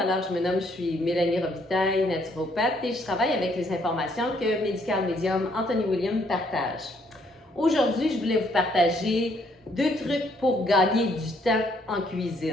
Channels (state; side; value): normal; both; correlation 0.68